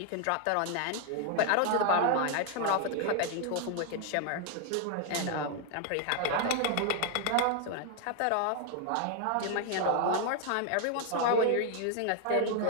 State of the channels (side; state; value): both; different; correlation 0.00